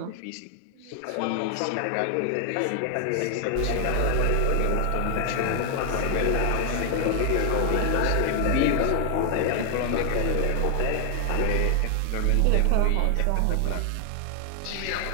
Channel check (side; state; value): both; different; correlation 0.00